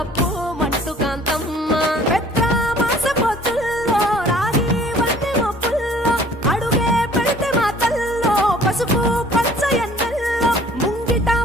మంటు కాంతమ్మ పెద్ద మాస పొత్తుల్లో రాగి వంటి మొప్పుల్లో అడుగే పెడితే మాతల్లో పసుపు పచ్చ ఎన్నెల్లో ముంగిట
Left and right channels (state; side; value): normal; both; correlation 0.53